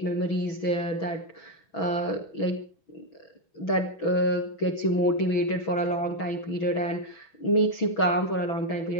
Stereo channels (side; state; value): right; late; 6.2 ms